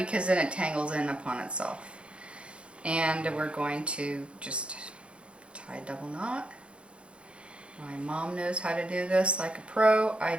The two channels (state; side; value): late; left; 0.058 ms